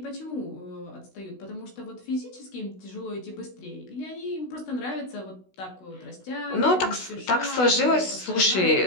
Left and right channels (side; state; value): right; late; 16 ms